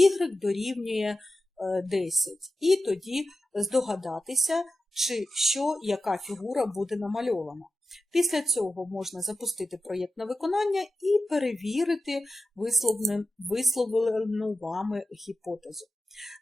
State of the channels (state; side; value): normal; both; correlation 0.91